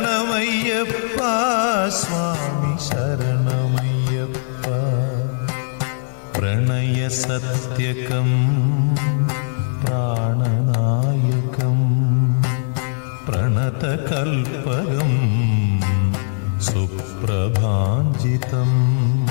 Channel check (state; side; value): silent; right; 66 dB below the other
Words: स्वामी शरणमय्यप्पा प्रणयसत्यकं प्राणनायकं प्रणतकल्पकं सुप्रभाञ्जितं